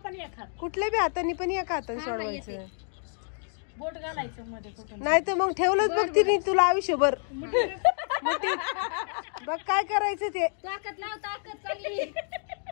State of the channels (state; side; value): silent; right; 59 dB below the other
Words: कुठल्या बी हाताने पण एका हाताने सोडवायचं. नाही तर मग ठेवलंच बघ तिने तुला आयुष्यभर मुठीत. बघ काय करायचं ते. ताकद लाव, ताकद चांगली.